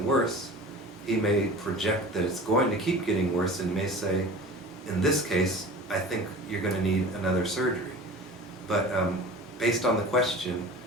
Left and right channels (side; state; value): both; normal; correlation 0.38